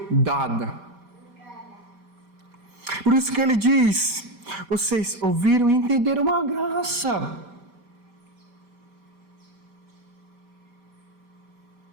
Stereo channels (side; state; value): left; late; 5.1 ms